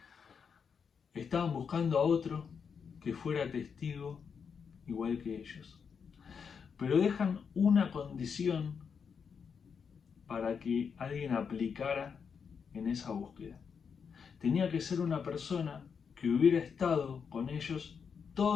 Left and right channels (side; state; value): right; quieter; 6.4 dB